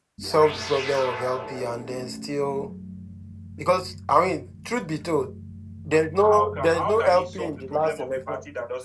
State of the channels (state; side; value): identical; both; correlation 1.00